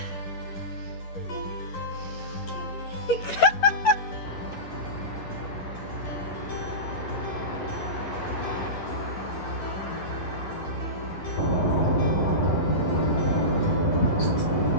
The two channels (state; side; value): late; right; 11 ms